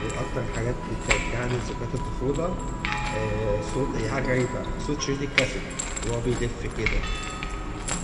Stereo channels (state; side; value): identical; both; correlation 1.00